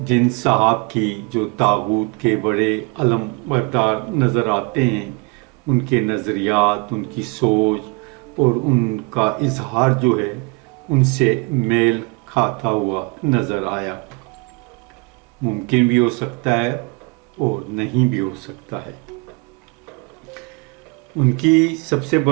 जिन साहब की जो तागूत के बड़े अलम बरदार नज़र आते हैं, उनके नज़रियात, उनकी सोच और उनका इजहार जो है उनसे मेल खाता हुआ नज़र आया। मुमकिन भी हो सकता है और नहीं भी हो सकता है। उनकी सबसे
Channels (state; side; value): quieter; left; 28.8 dB